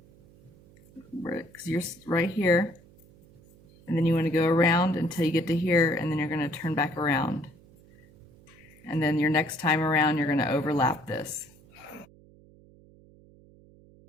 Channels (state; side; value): noise; right; hum, 26 dB below the sound